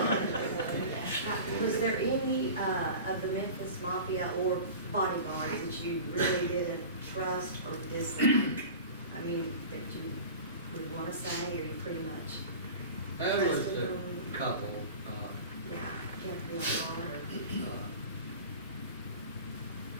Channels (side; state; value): both; inverted; correlation -0.35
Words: Was there any of the Memphis Mafia or bodyguards that you really didn't trust or dislike? I mean, that you would want to say, or you pretty much There was trusted a them? couple, Yeah, kept me on guard.